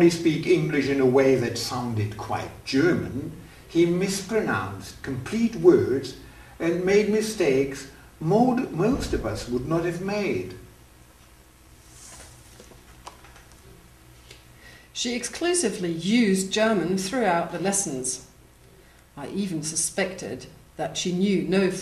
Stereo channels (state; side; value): identical; both; correlation 1.00